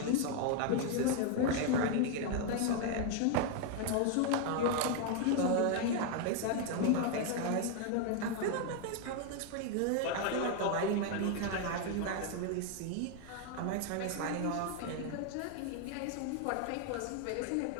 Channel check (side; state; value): both; different; correlation 0.00